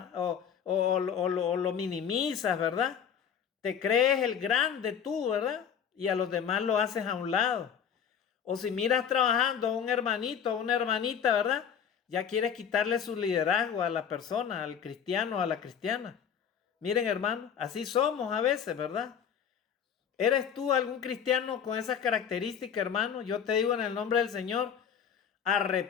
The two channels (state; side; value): quieter; right; 7.9 dB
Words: o lo minimizas, ¿verdad? Te crees el grande tú, ¿verdad? Y a los demás lo haces a un lado. O si miras trabajando a un hermanito, a una hermanita, ¿verdad? Ya quieres quitarle su liderazgo a la persona, al cristiano, a la cristiana. Miren, hermano, así somos a veces, ¿verdad? ¿Eres tú algún cristiano con esas características, hermano? Yo te digo en el nombre del Señor,